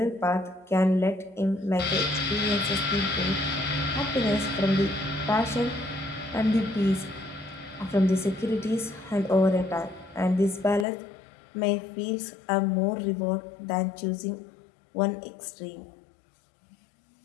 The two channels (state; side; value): drops out; right; at 10.9 s